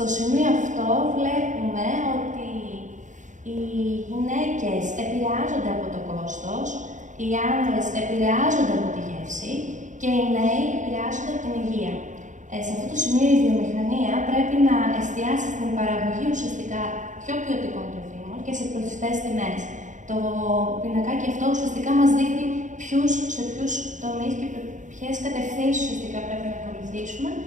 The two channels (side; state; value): left; late; 0.36 ms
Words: σημείο αυτό βλέπουμε ότι οι γυναίκες επηρεάζονται από το κόστος, οι άνδρες επηρεάζονται από τη γεύση και οι νέοι επηρεάζονται από την υγεία. Σε αυτό το σημείο η βιομηχανία πρέπει να εστιάσει στην παραγωγή ουσιαστικά πιο ποιοτικών τροφίμων και σε προσιτές τιμές. Το πινακάκι αυτό ουσιαστικά μας δείχνει σε ποιους τομείς και ποιες κατευθύνσεις ουσιαστικά πρέπει να ακολουθήσουμε